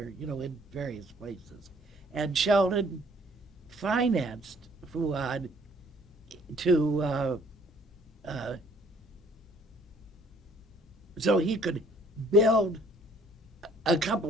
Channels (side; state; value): both; normal; correlation 0.59